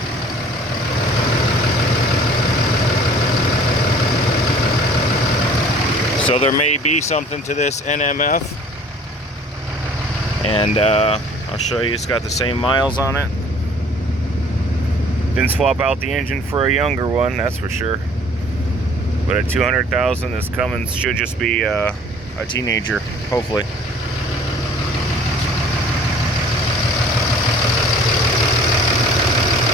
So there may be something to this NMF, and I'll show you. It's got the same miles on it. Didn't swap out the engine for a younger one, that's for sure. But at 200,000, this Cummins should just be a teenager, hopefully.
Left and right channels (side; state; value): both; normal; correlation 0.52